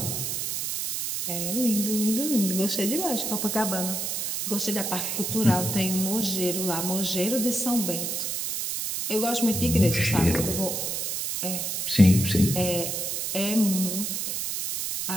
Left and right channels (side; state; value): right; noise; hiss, 2 dB below the sound